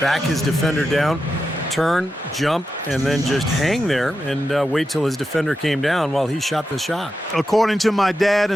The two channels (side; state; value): both; normal; correlation 0.89